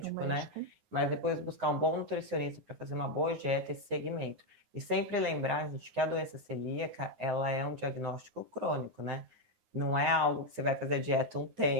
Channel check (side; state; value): left; late; 9.6 ms